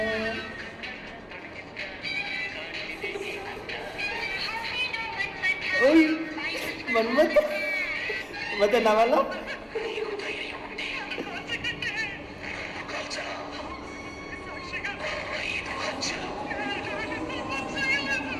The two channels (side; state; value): both; identical; correlation 1.00